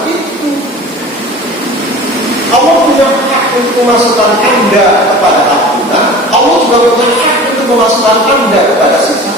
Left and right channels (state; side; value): normal; both; correlation 0.39